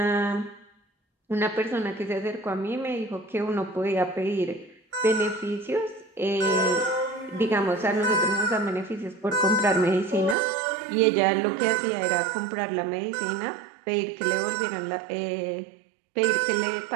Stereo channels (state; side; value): drops out; left; at 10.4 s